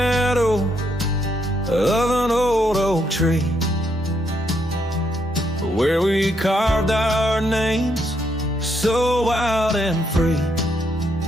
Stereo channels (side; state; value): both; normal; correlation 0.75